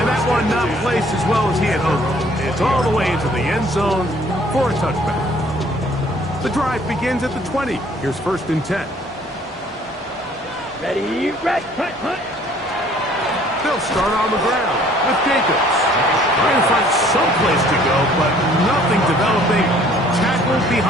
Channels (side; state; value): both; normal; correlation 0.57